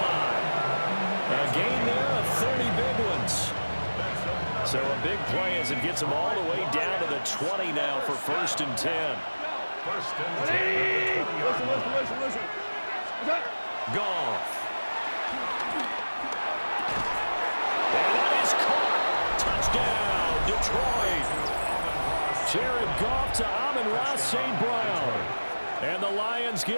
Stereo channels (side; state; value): both; inverted; correlation -1.00